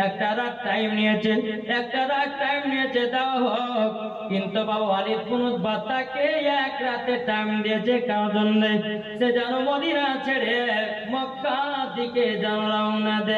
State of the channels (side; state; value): both; identical; correlation 1.00